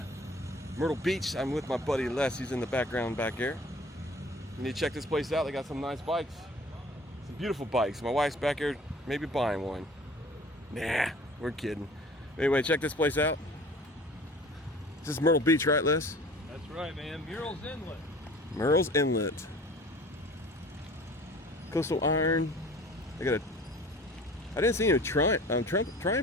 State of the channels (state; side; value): normal; both; correlation 0.46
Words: Myrtle Beach. I'm with my buddy Les. He's in the background back there. You need to check this place out. They got some nice bikes, some beautiful bikes. My wife's back here maybe buying one. Nah, we're kidding. Anyway, check this place out. This is Myrtle Beach, right, Les? That's right, man. Myrtle's Inlet. Myrtle's Inlet. Coastal Iron. I didn't see any